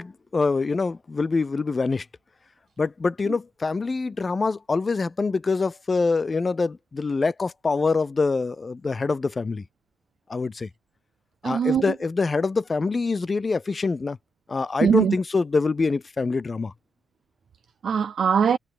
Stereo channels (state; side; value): normal; both; correlation 0.87